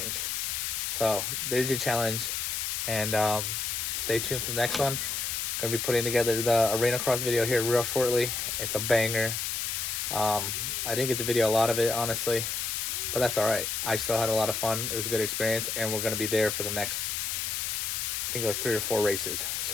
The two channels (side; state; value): left; noise; hiss, 1 dB below the sound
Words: So there's your challenge, and stay tuned for the next one. Gonna be putting together the arena cross video here real shortly. It's a banger. I didn't get the video a lot of it, honestly, but that's all right. I still had a lot of fun. It was a good experience, and we're gonna be there for the next, I think, like 3 or 4 races.